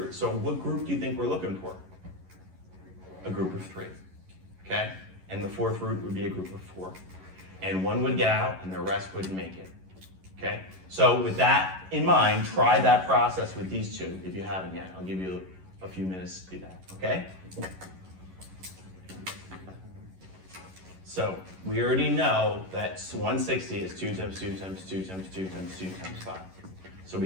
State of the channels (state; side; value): late; left; 11 ms